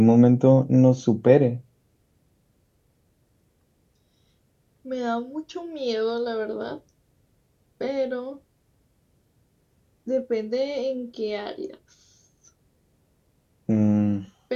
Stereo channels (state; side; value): identical; both; correlation 1.00